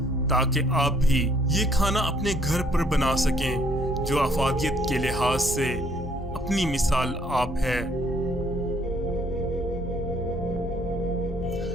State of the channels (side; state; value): both; normal; correlation 0.64